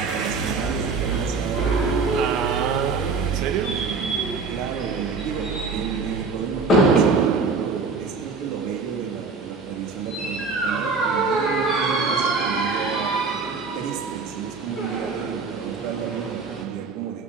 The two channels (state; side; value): quieter; left; 4.5 dB